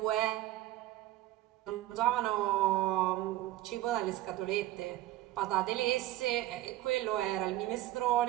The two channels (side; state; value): left; quieter; 15.5 dB